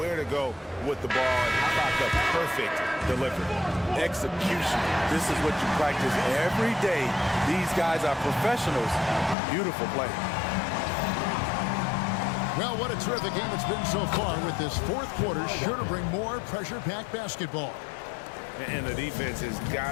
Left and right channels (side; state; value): right; drops out; at 9.3 s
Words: to go with the ball. And how about the perfect delivery? Execution. This is what you practice every day. These guys are professionals. Beautiful play. Well, what a terrific game it's been so far with this fourth quarter. Sure to bring more pressure-packed basketball. And the defense has